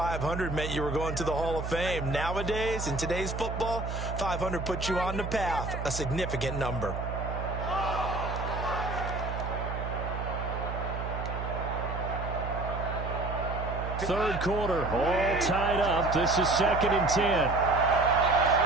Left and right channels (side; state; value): right; noise; hum, 5 dB below the sound